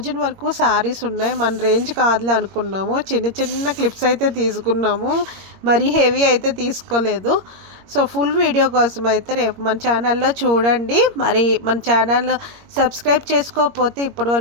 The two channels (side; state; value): left; late; 21 ms